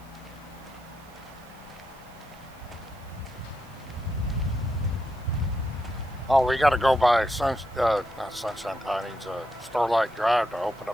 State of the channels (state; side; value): noise; right; hiss, 27 dB below the sound